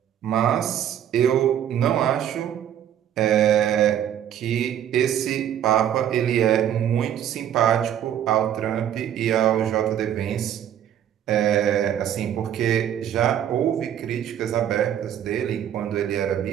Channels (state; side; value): quieter; left; 10.3 dB